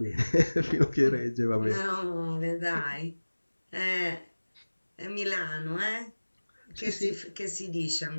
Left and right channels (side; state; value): both; inverted; correlation -1.00